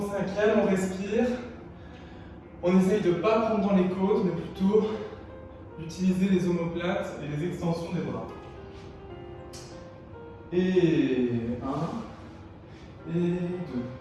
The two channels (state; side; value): identical; both; correlation 1.00